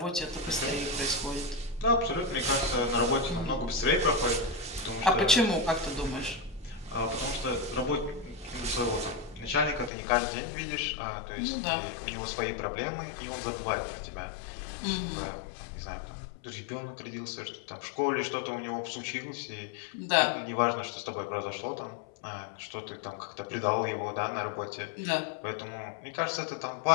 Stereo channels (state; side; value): drops out; right; at 9.9 s